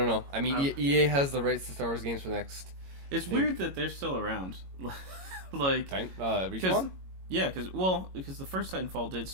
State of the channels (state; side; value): late; left; 22 ms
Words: know. I mean, EA has the rights to Star Wars games for the next. It's weird that they're still around. Like Respawn? Because the first Titanfall did